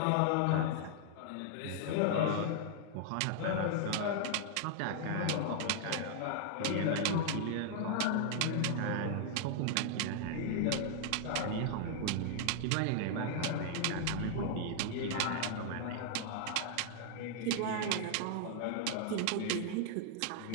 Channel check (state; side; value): different; both; correlation -0.01